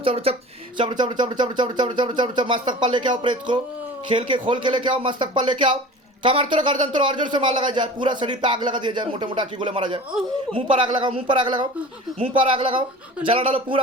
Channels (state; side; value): normal; both; correlation 0.39